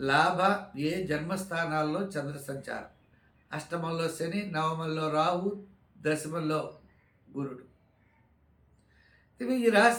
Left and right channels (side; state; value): both; identical; correlation 1.00